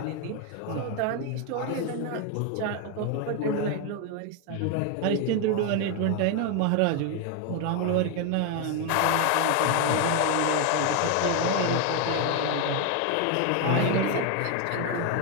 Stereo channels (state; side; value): different; both; correlation 0.01